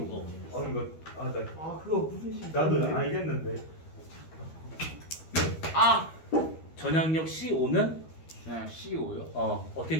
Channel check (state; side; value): late; right; 13 ms